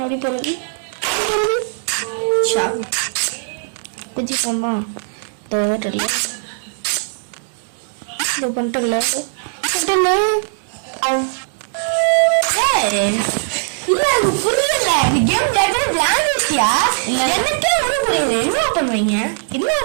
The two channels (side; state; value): left; silent; digital silence